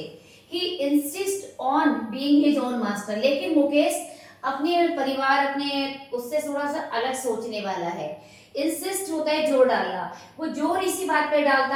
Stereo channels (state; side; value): identical; both; correlation 1.00